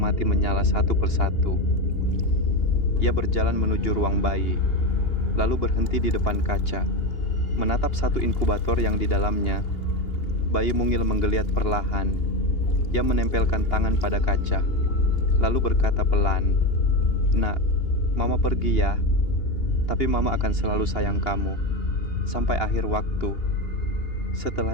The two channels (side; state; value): right; late; 2.8 ms